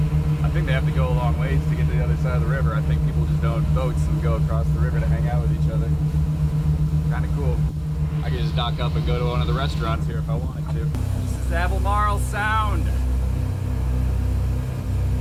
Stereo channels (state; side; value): identical; both; correlation 1.00